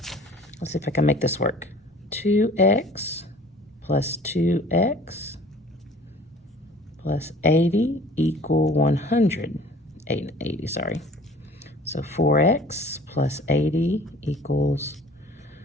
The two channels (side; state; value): both; normal; correlation 0.49